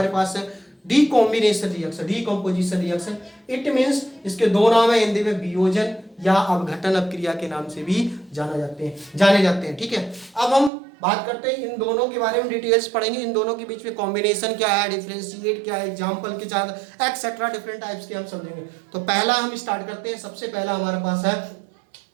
पास है decombination reaction, decomposition reaction. It means इसके 2 नाम है हिंदी में, वियोजन या अपघटन अपक्रिया के नाम से भी जाने जाते हैं। ठीक है, अब हम बात करते हैं इन दोनों के बारे में, डिटेल्स पढ़ेंगे। इन दोनों के बीच में कॉम्बिनेशन क्या है, डिफरेंशिएट क्या है, एग्जांपल के साथ एक्सेट्रा डिफरेंट टाइप्स के हम समझेंगे। तो पहला हम स्टार्ट करते हैं। सबसे पहला हमारे पास है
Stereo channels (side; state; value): left; drops out; at 10.7 s